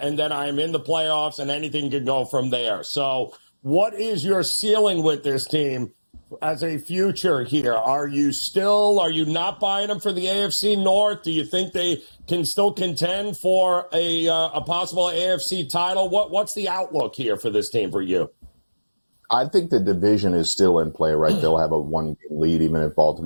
and then I'm in the playoffs, and anything can go from there. So what is your ceiling with this team as a future here? Are you not buying them for the AFC North? Do you think they can still contend for a possible AFC title? What's the outlook here for this team for you? I think the division is still in play, right? They'll have a 1-game lead even if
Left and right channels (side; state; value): both; inverted; correlation -1.00